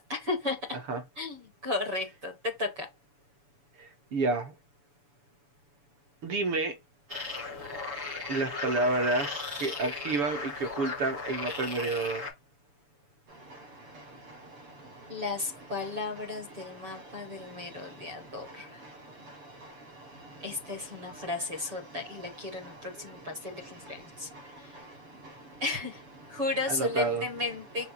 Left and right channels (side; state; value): left; late; 7.0 ms